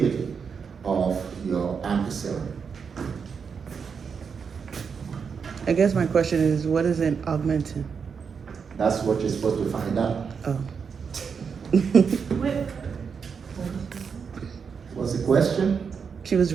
of your ampicillin. I guess my question is, what is an augmentin? That's what you're supposed to find out. Oh. What's the question? She was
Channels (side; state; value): left; quieter; 6.1 dB